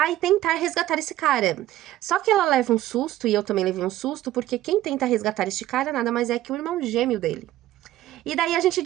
tentar resgatar esse cara. Só que ela leva um susto, e eu também levei um susto, porque quem tenta resgatar este cara nada mais é que o irmão gêmeo dele. E daí a gente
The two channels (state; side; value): quieter; left; 14.4 dB